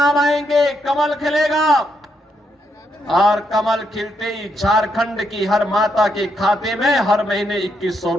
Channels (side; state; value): both; normal; correlation 0.78